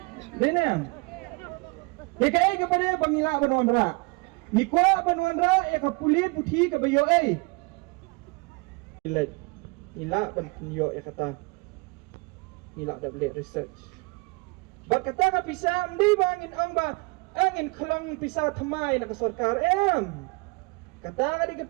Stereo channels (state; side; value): quieter; left; 28.6 dB